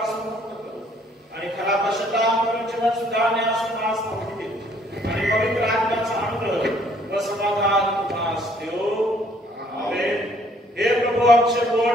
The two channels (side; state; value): both; normal; correlation 0.62